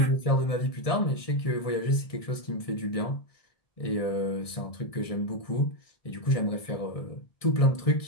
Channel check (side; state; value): right; late; 1.7 ms